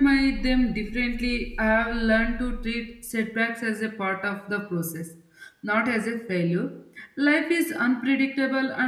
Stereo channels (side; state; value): both; identical; correlation 1.00